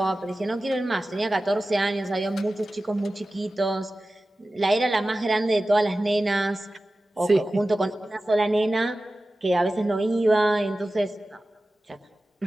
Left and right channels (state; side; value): normal; both; correlation 0.95